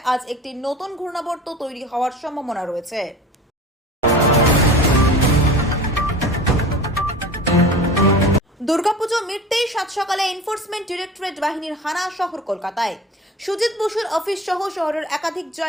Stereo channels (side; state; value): both; normal; correlation 0.38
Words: আজ একটি নতুন ঘূর্ণাবর্ত তৈরি হওয়ার সম্ভাবনা রয়েছে। দুর্গাপুজো মিটতেই সাত সকালে এনফোর্সমেন্ট ডিরেক্টরেট বাহিনীর হানা শহর কলকাতায়। সুজিত বসুর অফিস সহ শহরের একাধিক